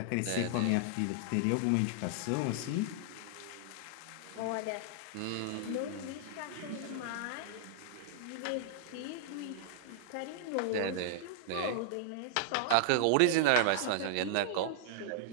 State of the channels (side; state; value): both; different; correlation -0.01